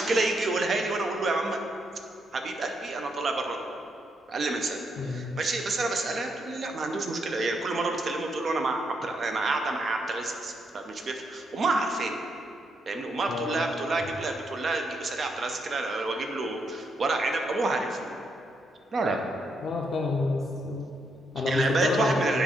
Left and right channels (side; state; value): both; normal; correlation 0.78